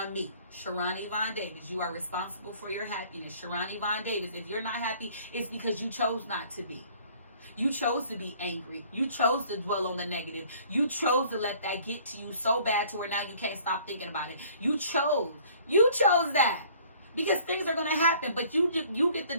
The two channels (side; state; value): both; inverted; correlation -0.55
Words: me. Sharon Yvonne Davis, you are responsible for your happiness. Sharon Yvonne Davis, if you're not happy, it's because you chose not to be. You chose to be angry. You chose to dwell on the negative. You chose to let that get to you so bad to where now you can't stop thinking about it. You chose that. Because things are going to happen, but you get to